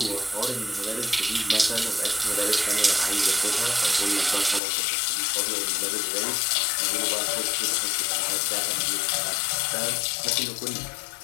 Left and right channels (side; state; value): right; drops out; at 4.6 s